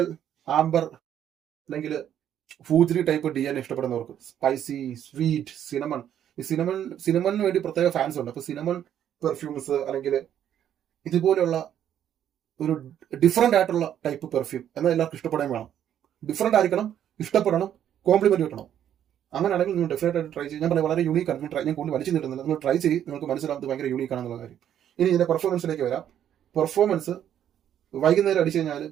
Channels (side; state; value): left; quieter; 10.2 dB